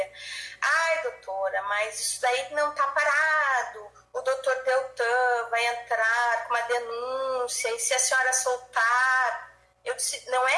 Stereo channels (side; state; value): both; identical; correlation 1.00